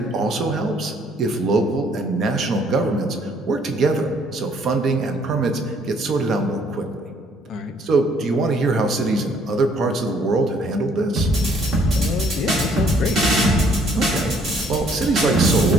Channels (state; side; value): normal; both; correlation 0.64